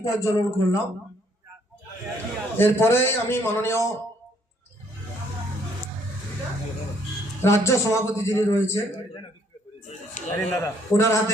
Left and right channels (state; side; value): normal; both; correlation 0.66